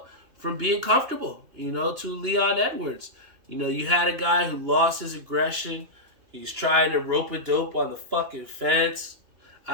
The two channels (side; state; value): left; late; 2.9 ms